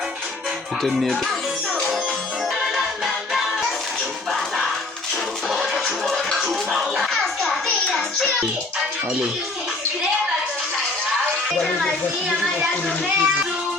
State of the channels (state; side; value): quieter; right; 3.1 dB